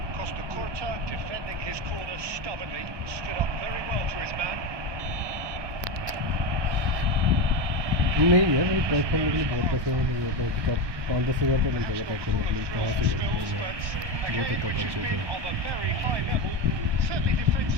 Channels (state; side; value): late; left; 1.2 ms